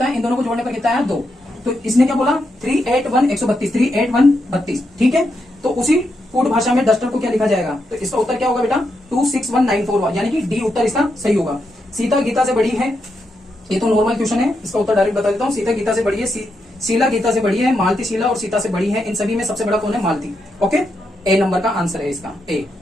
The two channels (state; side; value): normal; both; correlation 0.83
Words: है, इन दोनों को जोड़ने पर कितना आया? 2। तो इसने क्या बोला? 381 ठीक है, तो उसी कोड भाषा में डस्टर को क्या लिखा जाएगा? तो इसका उत्तर क्या होगा बेटा? 26194, यानी कि डी उत्तर इसका सही होगा। सीता गीता से बड़ी है, ये तो नॉर्मल क्वेश्चन है, इसका उत्तर डायरेक्ट बता देता हूँ। सीता गीता से बड़ी है, शीला गीता से बड़ी है, मालती शीला और सीता से बड़ी है। इन सभी में सबसे बड़ा कौन है? मालती। ओके, ए नंबर का आंसर है इसका, ए।